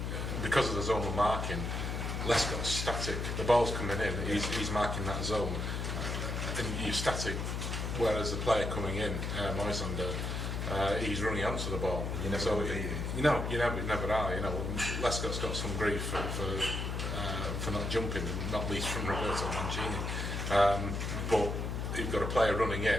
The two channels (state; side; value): noise; left; hum, 2 dB below the sound